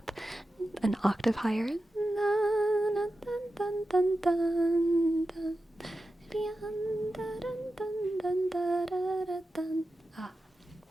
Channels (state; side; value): normal; both; correlation 0.92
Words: an octave higher. Ah,